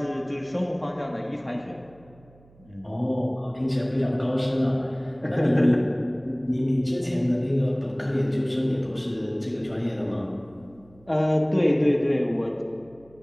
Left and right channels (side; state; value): right; noise; hum, 27 dB below the sound